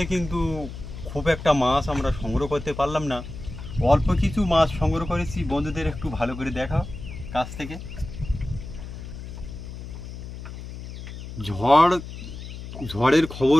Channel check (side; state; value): left; noise; hum, 10 dB below the sound